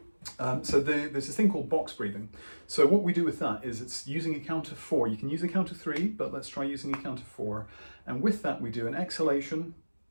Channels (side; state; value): both; inverted; correlation -1.00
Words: So there's this thing called box breathing. So what we do with that is it's using a count of 4. You can use a count of 3, but let's try using a count of 4. And with that, we do an exhalation